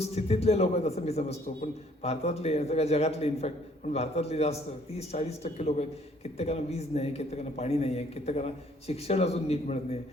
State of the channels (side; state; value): both; normal; correlation 0.61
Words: लोक आहेत असं मी समजतो, पण भारतातले सगळ्या जगातले इनफॅक्ट, पण भारतातले जास्त 30-40% लोक आहेत. कित्येकांना वीज नाही, कित्येकांना पाणी नाही आहे, कित्येकांना शिक्षण अजून नीट मिळत नाही.